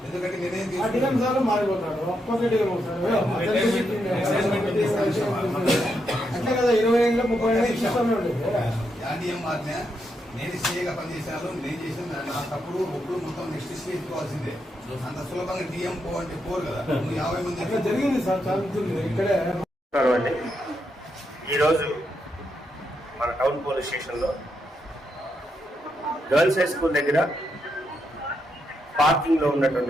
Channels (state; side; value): normal; both; correlation 0.81